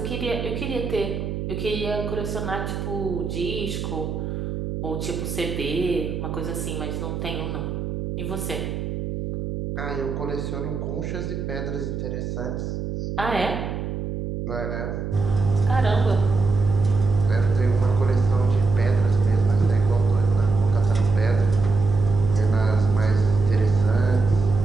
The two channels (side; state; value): right; noise; hum, 3 dB below the sound